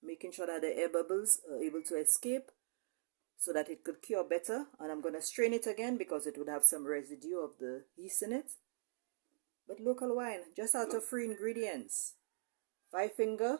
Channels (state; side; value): silent; left; digital silence